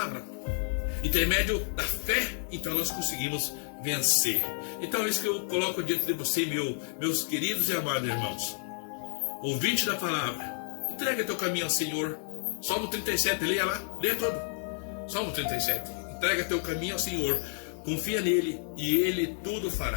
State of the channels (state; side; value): silent; right; digital silence